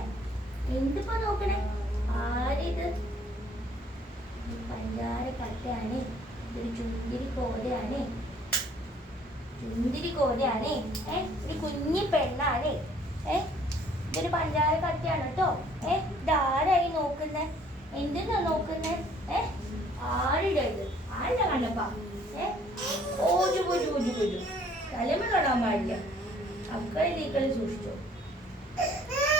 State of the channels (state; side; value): normal; both; correlation 0.59